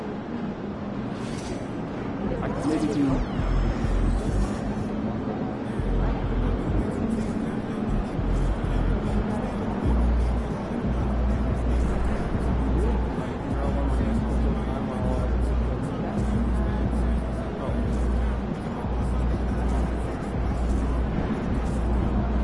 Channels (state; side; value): identical; both; correlation 1.00